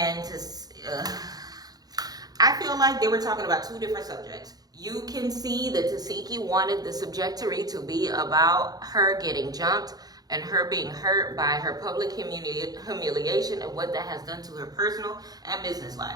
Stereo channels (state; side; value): late; left; 0.19 ms